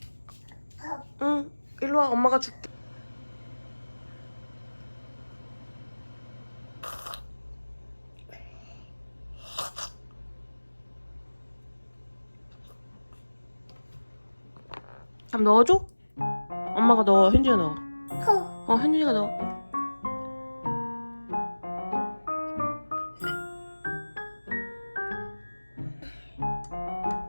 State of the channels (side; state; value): both; inverted; correlation -1.00